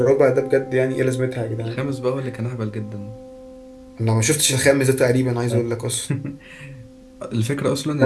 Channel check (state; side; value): identical; both; correlation 1.00